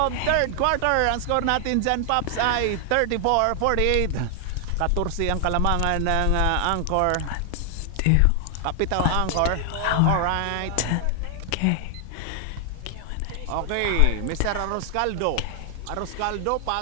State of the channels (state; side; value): different; both; correlation 0.00